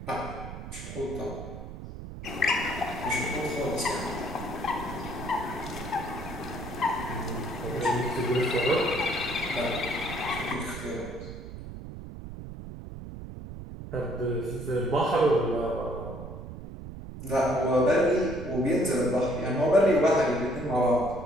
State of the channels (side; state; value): right; noise; rumble, 11 dB below the sound